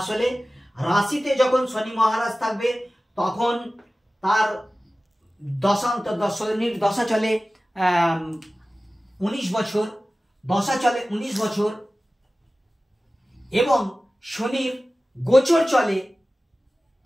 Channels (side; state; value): both; normal; correlation 0.96